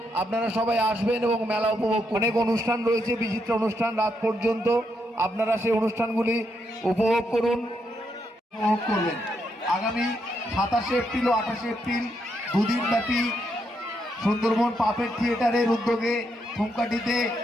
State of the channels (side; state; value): both; normal; correlation 0.79